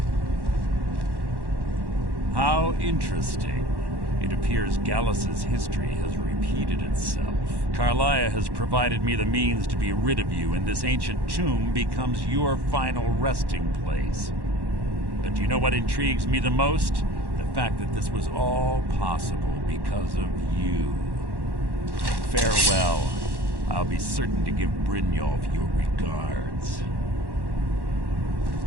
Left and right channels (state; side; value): late; left; 1.1 ms